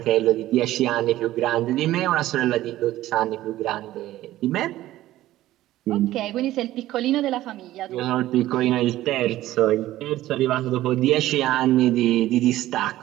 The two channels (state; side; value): quieter; left; 15.0 dB